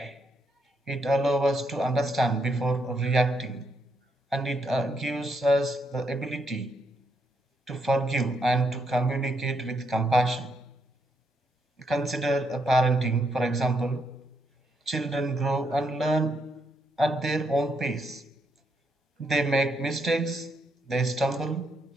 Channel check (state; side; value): normal; both; correlation 0.77